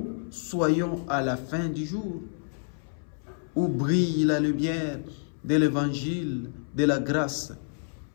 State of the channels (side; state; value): right; silent; 59 dB below the other